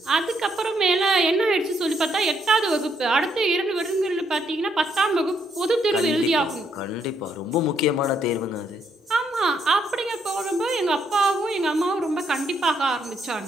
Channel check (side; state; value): both; normal; correlation 0.74